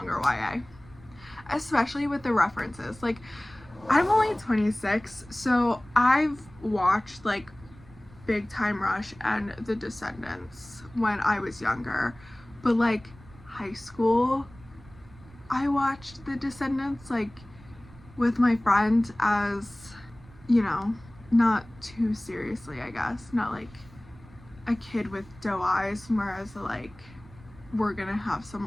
YA. Especially with the references. Like, I'm only 26, so I've watched, like, Big Time Rush and The Descendants when I was younger. But, like, high school, I watched The Descendants, like, with my friend as, you know, not too seriously, I guess. Not like a kid with doe eyes, whereas, like, we're gonna have some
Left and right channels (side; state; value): right; noise; rumble, 22 dB below the sound